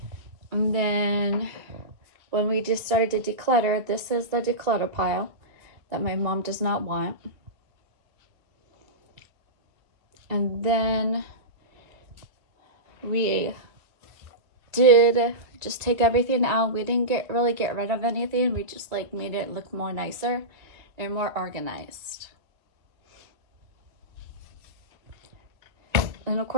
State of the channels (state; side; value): late; left; 2.1 ms